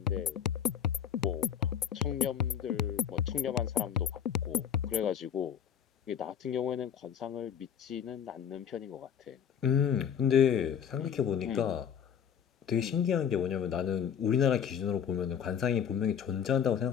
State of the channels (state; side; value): quieter; right; 8.3 dB